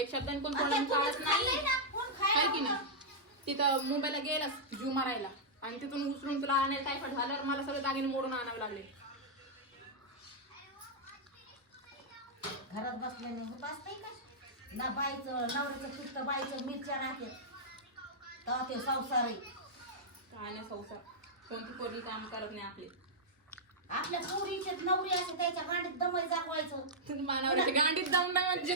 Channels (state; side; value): normal; both; correlation -0.08